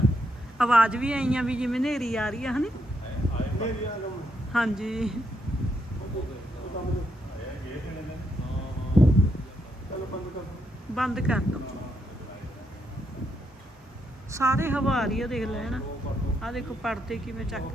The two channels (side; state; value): both; normal; correlation 0.79